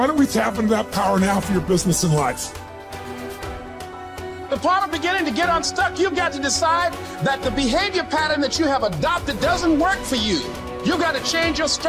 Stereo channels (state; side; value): identical; both; correlation 1.00